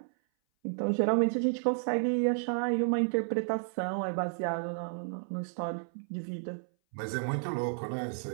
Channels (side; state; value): left; silent; 57 dB below the other